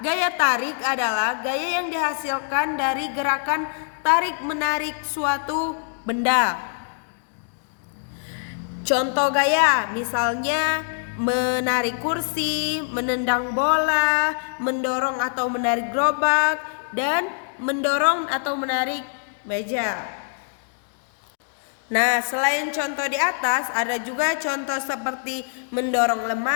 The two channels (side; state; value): right; silent; digital silence